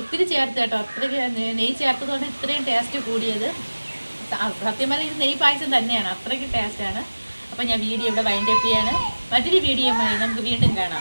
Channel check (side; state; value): both; inverted; correlation -1.00